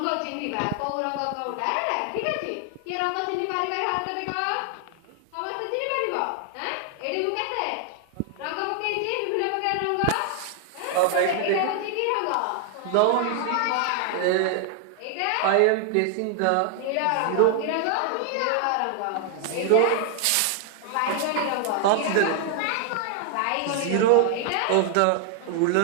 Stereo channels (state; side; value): different; both; correlation 0.00